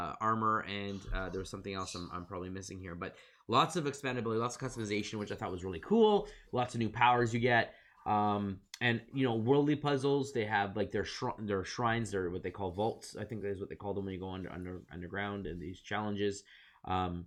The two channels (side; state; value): both; identical; correlation 1.00